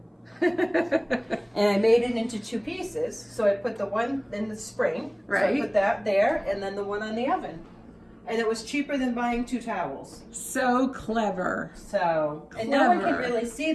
And I made it into two pieces. So I put the one in the spring. So Right. I put that there and then the one on the oven. And it was cheaper than buying two towels. So clever. So, and no one can Clever. really see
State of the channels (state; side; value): identical; both; correlation 1.00